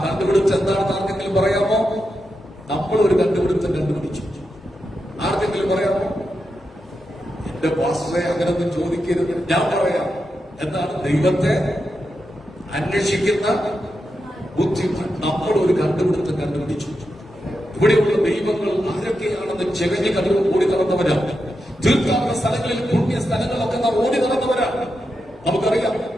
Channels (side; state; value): both; normal; correlation 0.87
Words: കണ്ടുപിടുത്തം എന്താണെന്ന് ആർക്കെങ്കിലും പറയാമോ? നമ്മൾ ഒരു കണ്ടുപിടുത്തം കണ്ടുപിടിച്ചു. ആർക്കെങ്കിലും പറയാമോ? എന്റെ പാസ്റ്ററെ അങ്ങനൊന്നും ചോദിക്കരുത്. ഞാൻ പറയാം. എന്താണ്? ദൈവത്തെ അന്വേഷിക്കുന്ന ബുദ്ധിമാൻ. നമ്മൾ ഒരു കണ്ടുപിടിച്ചു. ഇവിടെയുള്ള ദൈവങ്ങൾ ആരൊക്കെയാണെന്ന് ചെകഞ്ഞ് കടന്നു ഓടി നടന്നവരാ. തീർത്ഥാടന സ്ഥലങ്ങളിൽ, പുണ്യ സ്ഥലങ്ങളൊക്കെ നാം ഓടി നടന്നവരാ, നമുക്കറിയാം.